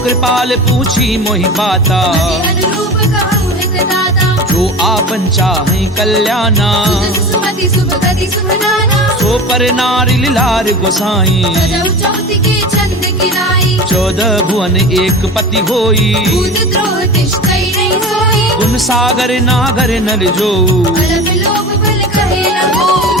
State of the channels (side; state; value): both; normal; correlation 0.32